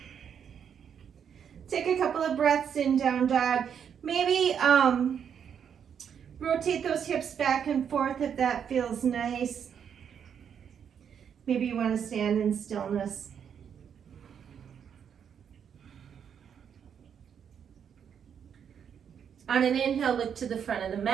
Take a couple of breaths in down dog. Maybe rotate those hips back and forth if that feels nice. Maybe you want to stand in stillness. On an inhale, look to the front of the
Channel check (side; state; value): left; quieter; 7.9 dB